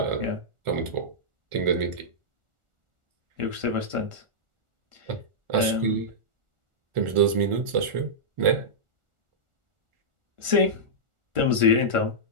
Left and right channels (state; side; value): late; left; 1.4 ms